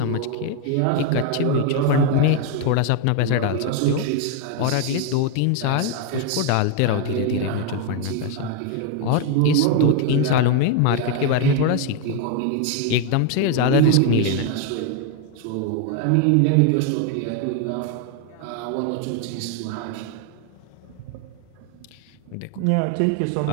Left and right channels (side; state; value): both; different; correlation 0.01